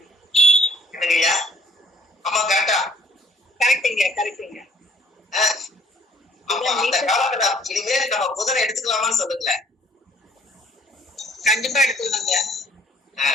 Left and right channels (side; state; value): both; normal; correlation 0.59